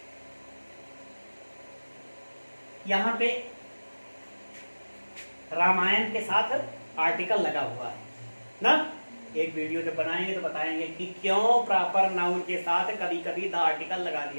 यहां पे रामायण के साथ आर्टिकल लगा हुआ है ना। एक वीडियो जब बनाएंगे तो बताएंगे कि क्यों प्रॉपर नाउन के साथ कभी कभी द आर्टिकल लगा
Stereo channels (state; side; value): inverted; both; correlation -1.00